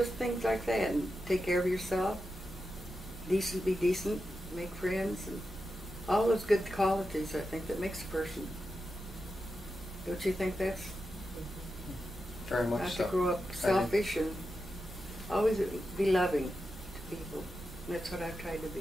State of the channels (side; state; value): both; normal; correlation 0.89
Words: things like that, and take care of yourself. Decent, be decent, make friends, and all those good qualities, I think, that makes a person. Don't you think that's? Very much Not so. to grow up selfish and always be loving to people. That's what I've tried to